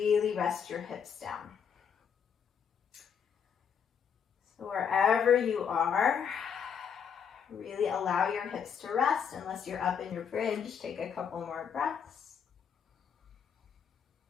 rest your hips down. So wherever you are, really allow your hips to rest. Unless you're up in your bridge, take a couple more breaths.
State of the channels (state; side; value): quieter; right; 7.3 dB